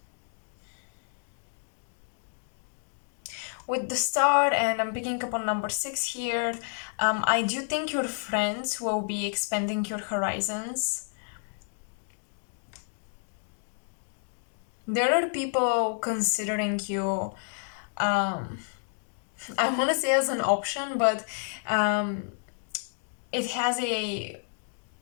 With the star, and I'm picking up on number 6 here, I do think your friends will be expanding your horizons. There are people considering you, I want to say as an option, but it has a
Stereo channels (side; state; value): right; silent; digital silence